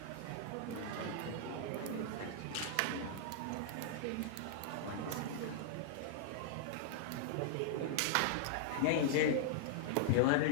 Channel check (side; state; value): both; different; correlation -0.01